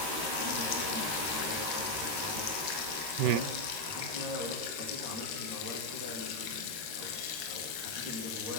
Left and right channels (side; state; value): left; late; 13 ms